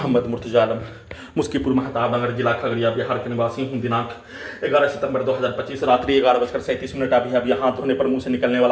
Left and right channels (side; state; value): both; identical; correlation 1.00